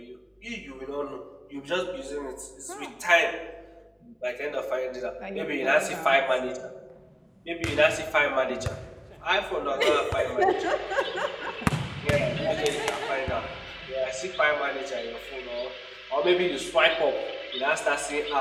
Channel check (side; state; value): both; identical; correlation 1.00